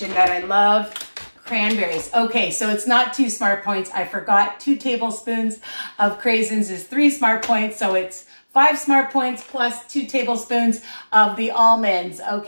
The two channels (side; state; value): both; inverted; correlation -1.00